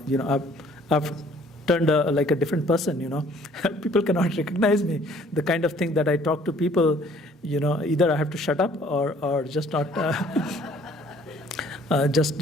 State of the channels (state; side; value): normal; both; correlation 0.57